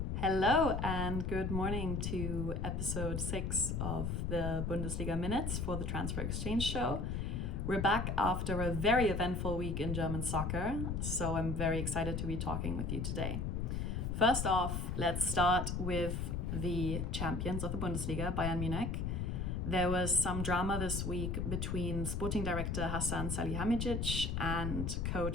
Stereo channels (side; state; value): left; noise; rumble, 1 dB below the sound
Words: Hello and good morning to episode 6 of the Bundesliga Minutes for the Transfer Exchange Show. We're back after a very eventful week in German soccer, so I'm very excited to be talking with you today. First off, let's start with the champions of the Bundesliga, Bayern Munich. There was some drama this week between sporting director Hasan Salihamidzic and